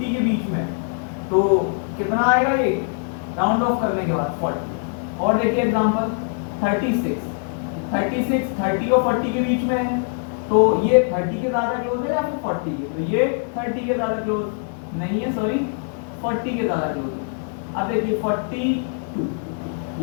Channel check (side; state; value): right; silent; 64 dB below the other